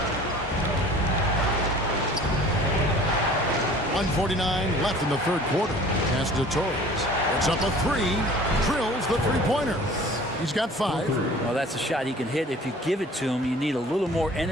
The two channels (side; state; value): both; normal; correlation 0.47